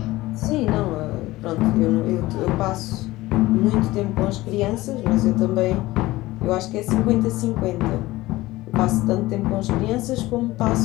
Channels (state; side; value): quieter; right; 18.4 dB